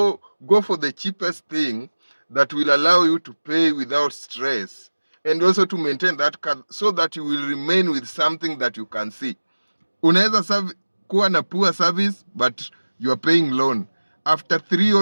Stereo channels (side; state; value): both; inverted; correlation -1.00